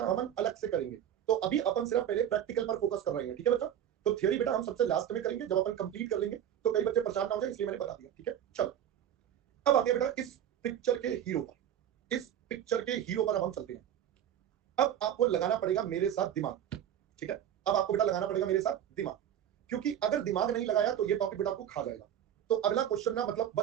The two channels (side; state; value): left; quieter; 10.2 dB